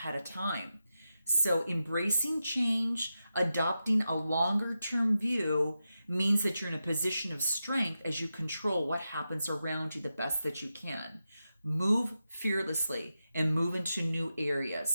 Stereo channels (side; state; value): both; inverted; correlation -0.90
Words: of time. So embracing change, adopting a longer term view means that you're in a position of strength as you control what happens around you the best that you can. Move fearlessly and move into new